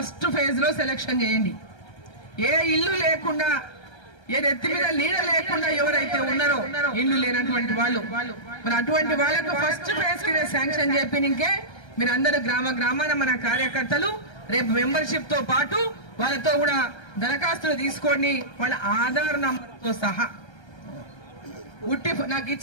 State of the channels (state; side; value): late; right; 1.3 ms